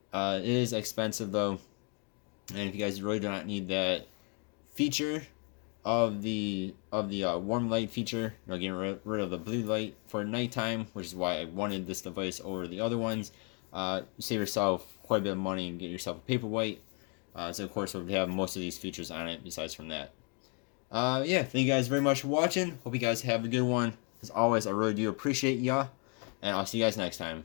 It is expensive, though. And if you guys really do not need that feature of the warm light feature, getting rid of the blue light for nighttime, which is why I wanted this device over the other ones, you save yourself quite a bit of money and get yourself a Paperwhite. So of course, it would have most of these features on it besides from that. Yeah, thank you guys very much for watching. Hope you guys have a good one. As always, I really do appreciate y'all. And I'll see you guys next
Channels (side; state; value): right; quieter; 37.1 dB